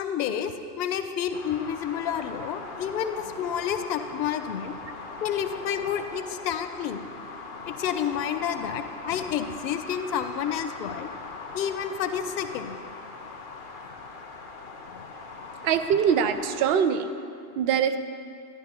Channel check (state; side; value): late; left; 2.8 ms